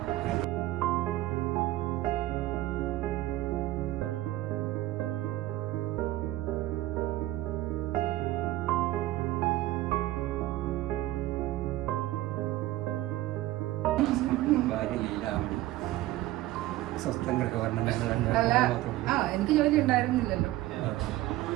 ഭാര്യ ലീലാമണി സ്വസ്ഥം ഗൃഹവർണ്ണം എനിക്ക് ജോലി ഉണ്ടായിരുന്നില്ലല്ലോ.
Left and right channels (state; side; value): quieter; left; 16.3 dB